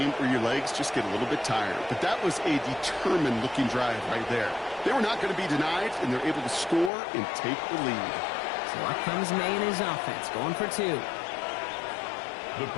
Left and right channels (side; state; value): right; drops out; at 6.9 s